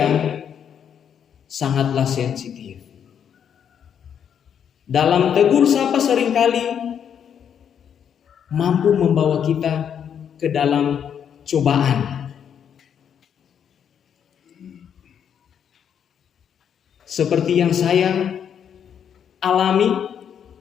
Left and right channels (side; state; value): right; quieter; 8.3 dB